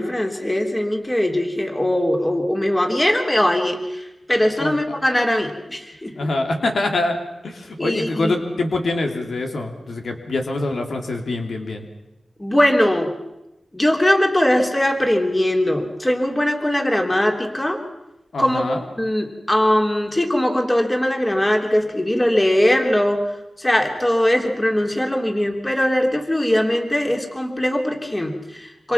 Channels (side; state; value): both; normal; correlation 0.98